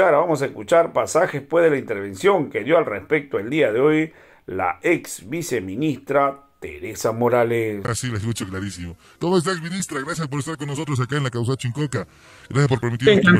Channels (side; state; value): both; identical; correlation 1.00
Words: a escuchar pasajes pues de la intervención que dio al respecto el día de hoy la ex viceministra Teresa Morales. Así la escucho clarísimo. ¿Cómo estás, ministra? Gracias por estar con nosotros acá en la Causa Chincoca. Gracias por permitirnos